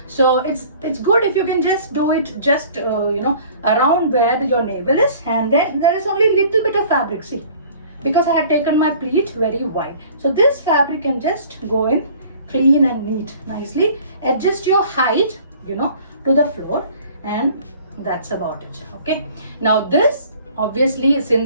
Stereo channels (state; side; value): inverted; both; correlation -0.50